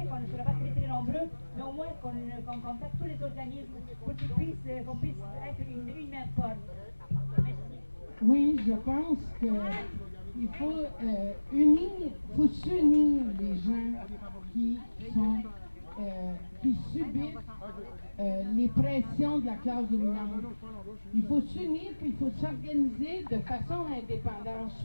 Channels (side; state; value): both; inverted; correlation -1.00